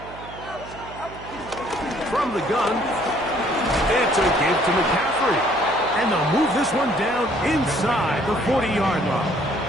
From the gun, it's a give to McCaffrey. And they'll move this one down inside the 40-yard line.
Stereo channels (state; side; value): noise; right; hum, 16 dB below the sound